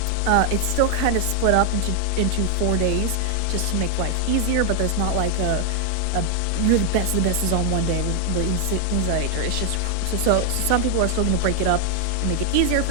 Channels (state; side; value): different; both; correlation 0.00